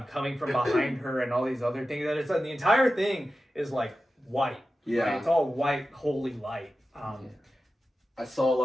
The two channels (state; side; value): normal; both; correlation 0.93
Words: coming from behind her and all these other things. And it's the entire thing is like white. Yeah, right? It's all white, holy light. I saw a